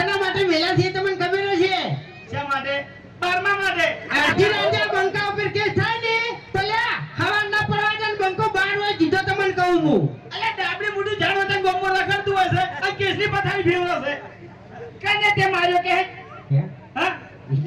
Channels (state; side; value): identical; both; correlation 1.00